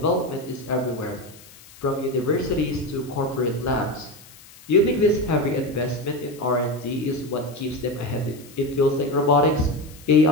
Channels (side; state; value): left; noise; hiss, 22 dB below the sound